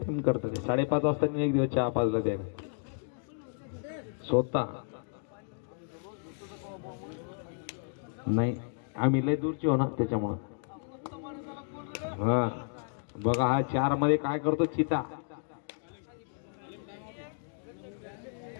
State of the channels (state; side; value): silent; right; 56 dB below the other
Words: करतात ते 5:30 वाजता एक दिवस चहा पाजला त्याने स्वतः नाही आम्ही लय दूरची हो ना त्याच्यामुळं हा बघा हा 4 मध्ये काय करतो चिता